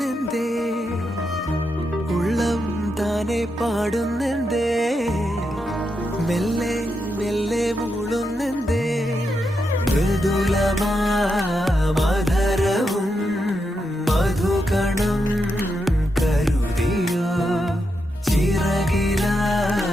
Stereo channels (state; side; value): normal; both; correlation 0.84